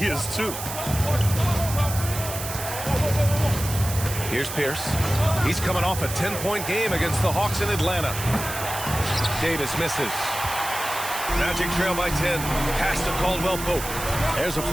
too. Here's Pierce. He's coming off a 10-point game against the Hawks in Atlanta. Davis misses. Magic trail by 10. Pass to Caldwell Pope. There's a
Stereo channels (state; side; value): noise; right; hiss, 7 dB below the sound